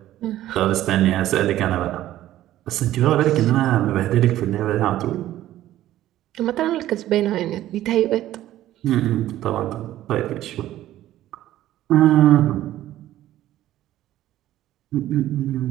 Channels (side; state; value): left; quieter; 13.8 dB